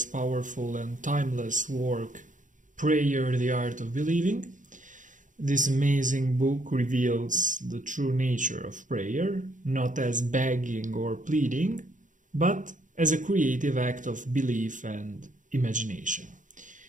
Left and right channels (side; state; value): left; late; 0.37 ms